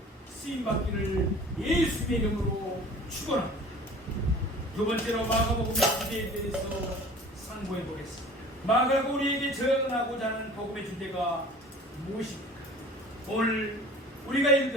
쓰임받기를 예수님의 이름으로 축원합니다. 두 번째로 마가복음의 주제에 대해서 상고해 보겠습니다. 마가가 우리에게 전하고자 하는 복음의 주제가 무엇입니까? 오늘 우리가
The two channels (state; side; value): normal; both; correlation 0.44